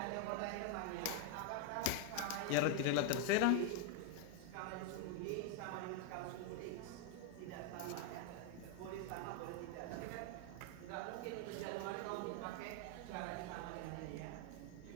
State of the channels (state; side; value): different; both; correlation 0.01